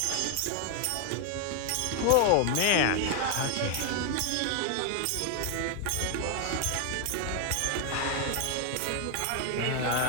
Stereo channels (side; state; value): both; different; correlation 0.00